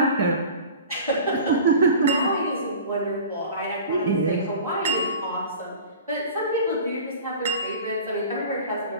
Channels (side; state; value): both; inverted; correlation -0.40